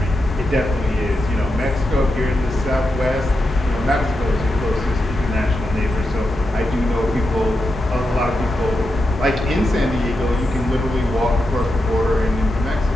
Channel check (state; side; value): normal; both; correlation 0.87